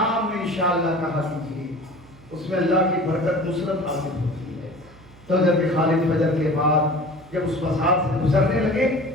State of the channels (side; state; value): right; noise; hum, 24 dB below the sound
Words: میں انشاءاللہ کہا کیجیے، اس میں اللہ کی برکت نصرت حاصل ہوتی ہے۔ تو جب خالد فجر کے بعد جب اس مسار سے گزرنے لگے